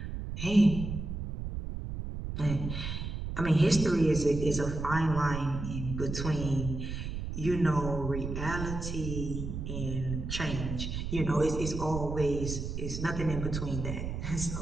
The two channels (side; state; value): right; noise; rumble, 5 dB below the sound